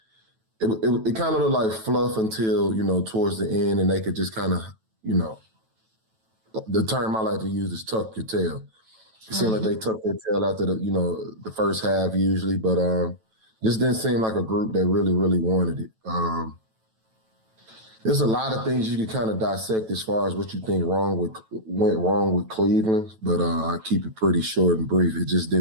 it kind of looked like fluff until towards the end, and they could just kind of the term I like to use is tuck your tail. It seemed like they tucked their tail after the first half usually, but just didn't seem like a group that really, really wanted it. There's a lot of things you can kind of dissect as far as what you think went wrong with Cleveland, but I keep it pretty short and brief. It just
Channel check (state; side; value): late; left; 9.1 ms